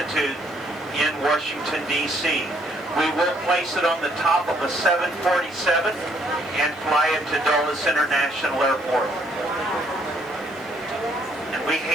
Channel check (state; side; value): noise; right; hiss, 29 dB below the sound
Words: in Washington, D.C. We will place it on the top of a 747 and fly it to Dulles International Airport. And we